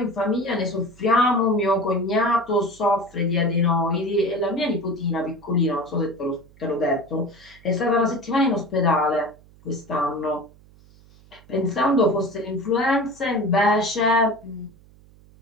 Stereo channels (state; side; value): noise; right; hum, 26 dB below the sound